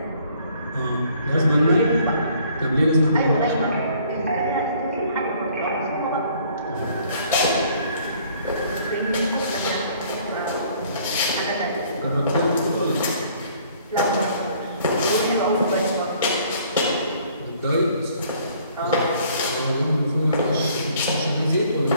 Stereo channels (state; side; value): inverted; both; correlation -0.59